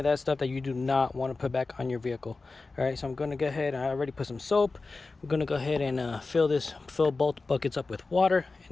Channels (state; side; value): quieter; right; 3.8 dB